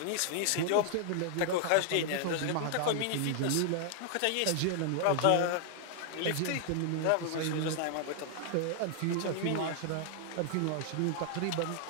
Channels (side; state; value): both; different; correlation 0.00